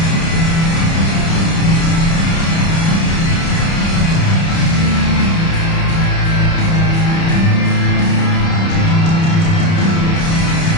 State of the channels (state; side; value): late; right; 30 ms